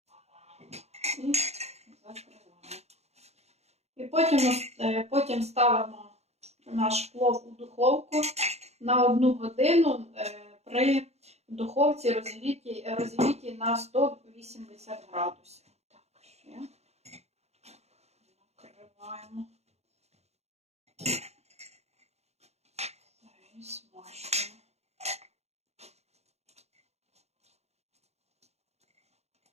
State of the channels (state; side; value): late; left; 0.31 ms